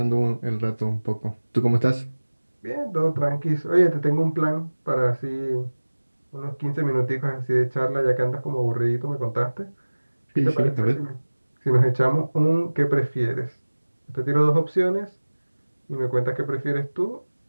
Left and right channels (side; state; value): both; inverted; correlation -1.00